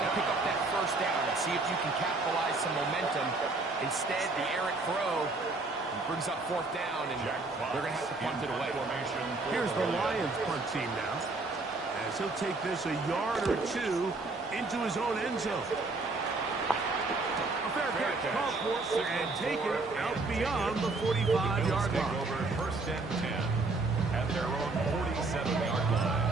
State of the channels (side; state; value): left; quieter; 3.4 dB